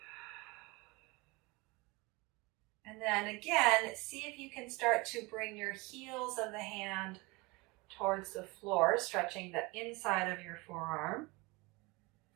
And then again, see if you can start to bring your heels of the hand towards the floor, stretching the inside of your forearm.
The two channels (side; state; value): left; quieter; 25.1 dB